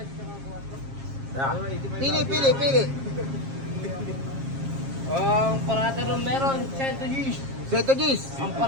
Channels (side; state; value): left; late; 7.4 ms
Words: Yeah. Pili. Ang parada nung meron, 100 Gs. Seto Gis. Ang